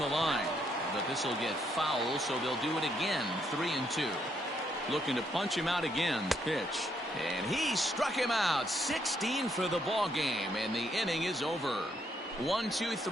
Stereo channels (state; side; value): normal; both; correlation 0.74